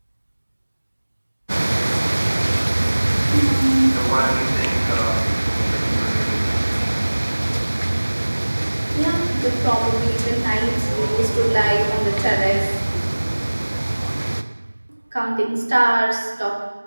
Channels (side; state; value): both; inverted; correlation -1.00